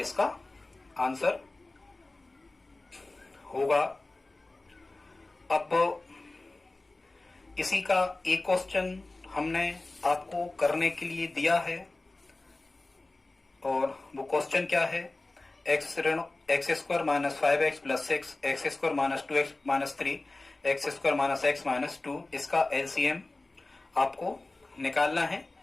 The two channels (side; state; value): right; quieter; 3.0 dB